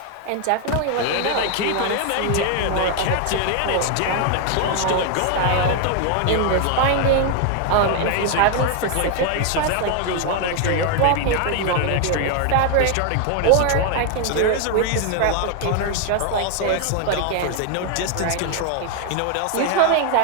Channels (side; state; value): both; different; correlation 0.00